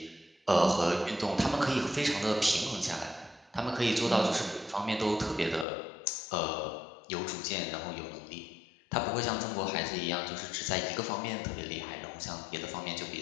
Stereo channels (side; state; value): right; drops out; at 5.7 s